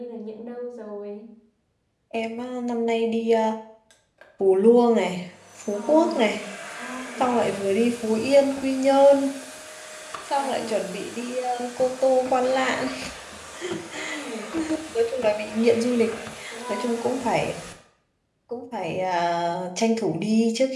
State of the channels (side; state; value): both; identical; correlation 1.00